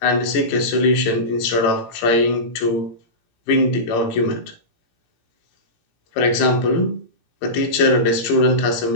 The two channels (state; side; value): late; right; 17 ms